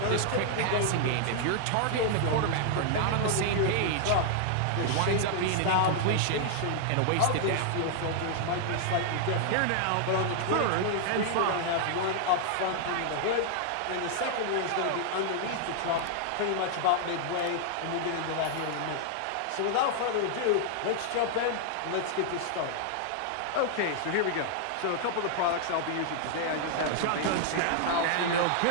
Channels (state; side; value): different; both; correlation -0.01